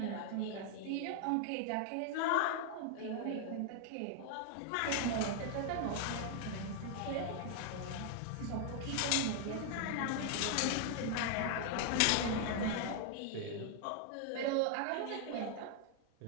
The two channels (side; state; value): both; different; correlation 0.00